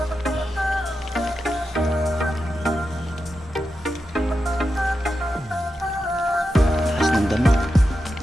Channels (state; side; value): normal; both; correlation 0.89